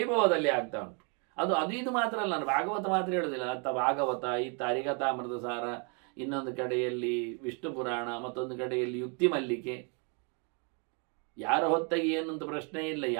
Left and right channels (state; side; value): quieter; left; 35.5 dB